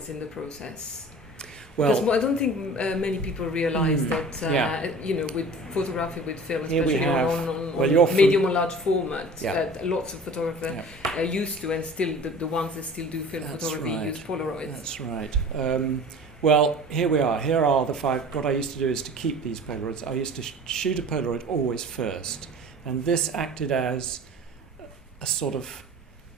in the process. Well, because I don't think many people realise that, yeah. you know, with photography with film, Here we especially have, on medium or large format, Yeah. lots of photographers are used to, and still the ones that still do film photography use Polaroids. That's right. Well, here we are. Here are the 5. What I used to do is to keep these Polaroids. I used to shoot a Polaroid always first, and this acted as a sort of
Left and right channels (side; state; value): both; normal; correlation 0.42